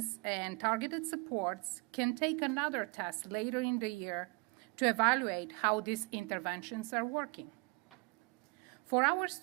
and targeted supports can take another test later in the year to evaluate how these interventions are working. For our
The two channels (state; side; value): quieter; left; 30.0 dB